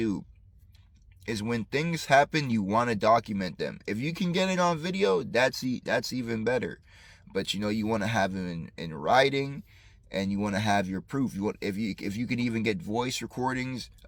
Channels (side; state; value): both; identical; correlation 1.00